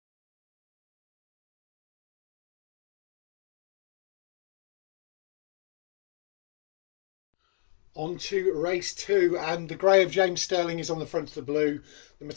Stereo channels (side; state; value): right; silent; 56 dB below the other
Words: On to race 2, and the grey of James Stirling is on the front of the blue. The